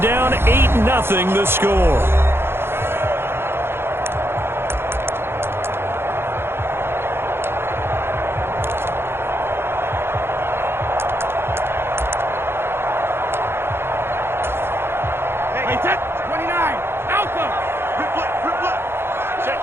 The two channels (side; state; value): left; late; 0.11 ms